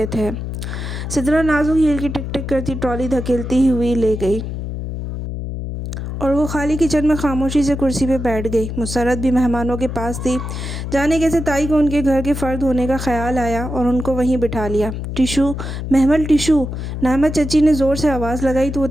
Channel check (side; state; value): left; noise; hum, 6 dB below the sound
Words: تھے۔ سدرا نازک ہیل کی ٹک ٹک کرتی ٹرالی دھکیلتی ہوئی لے گئی اور وہ خالی کچن میں خاموشی سے کرسی پہ بیٹھ گئی۔ مسرت بھی مہمانوں کے پاس تھی۔ جانے کیسے تائی کو ان کے گھر کے فرد ہونے کا خیال آیا اور ان کو وہیں بٹھا لیا۔ ٹشو محمل ٹشو، نعمت چچی نے زور سے آواز لگائی تو وہ